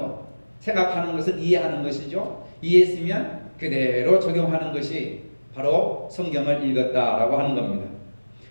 생각하는 것은 이해하는 것이죠. 이해했으면 그대로 적용하는 것이 바로 성경을 읽었다라고 하는 겁니다.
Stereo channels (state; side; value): inverted; both; correlation -1.00